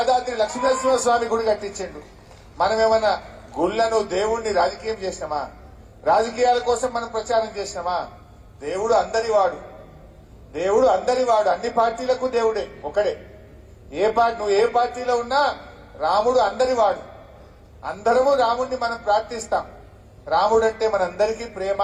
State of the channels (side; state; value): both; identical; correlation 1.00